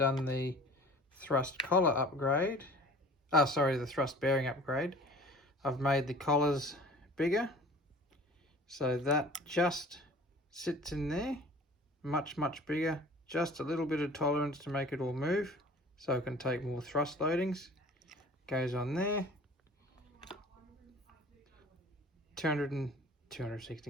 the thrust collar upgrade, the thrust bearing upgrade, I've made the collars bigger, so that just sits in there. Much bigger, just a little bit of tolerance to make it all move so it can take more thrust loadings. Goes on there.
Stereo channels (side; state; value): both; normal; correlation 0.46